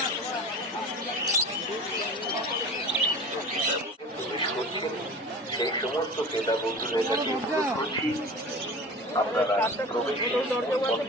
সেই সমস্ত ক্রেতা বন্ধুদের কাছে অনুরোধ করছি, আপনারা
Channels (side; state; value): both; normal; correlation 0.36